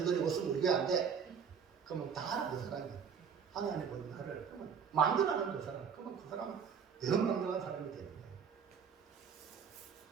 없으면 우리 교회 안 돼. 그러면 다 하나 그 사람이에요. 하나님 보는 나를, 그러면 만들어가는 그 사람, 그러면 그 사람은 대만들어간 사람이 되는 거예요.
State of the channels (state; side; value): quieter; left; 6.8 dB